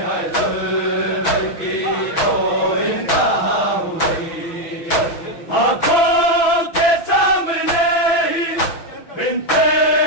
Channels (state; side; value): late; right; 6.0 ms